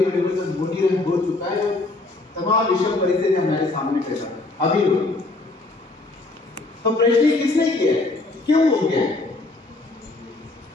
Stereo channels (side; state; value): right; quieter; 3.2 dB